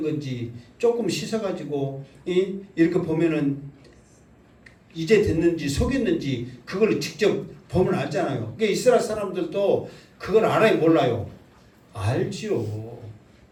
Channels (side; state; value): both; identical; correlation 1.00